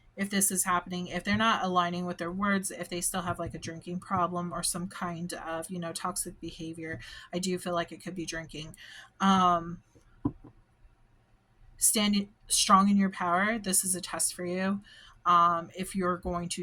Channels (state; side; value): identical; both; correlation 1.00